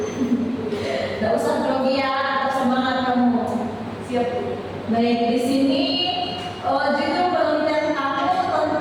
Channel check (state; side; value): identical; both; correlation 1.00